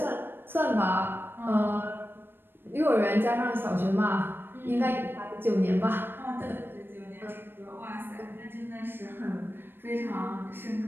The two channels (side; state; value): left; late; 0.10 ms